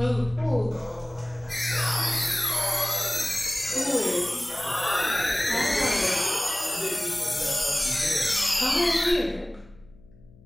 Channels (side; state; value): left; noise; hum, 25 dB below the sound